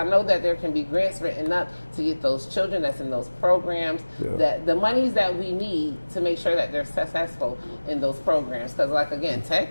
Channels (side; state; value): both; inverted; correlation -1.00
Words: know that there can be grants written up to get those children that's in those programs, that the monies that we need to make sure that they're successful in those programs. Because, like, again, tech